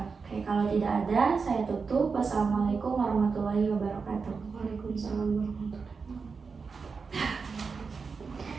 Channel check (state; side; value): quieter; left; 5.0 dB